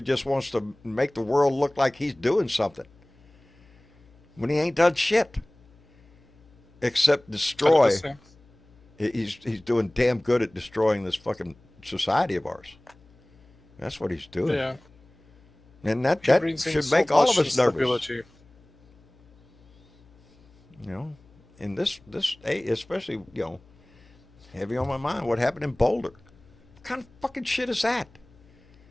wants to make the world look like he's doing something when he ain't done shit except destroy. He's doing damn good at destroying this fucking society of ours. That's what he's doing. Yeah. And that should make all of us nervous. In this especially, heavy on my mind, what happened in Boulder. What kind of fucking shit is that?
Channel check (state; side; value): noise; left; hum, 29 dB below the sound